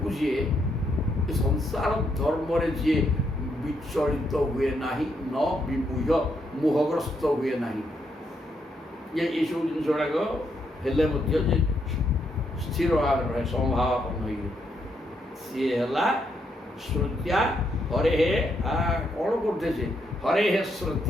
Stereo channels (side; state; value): both; normal; correlation 0.77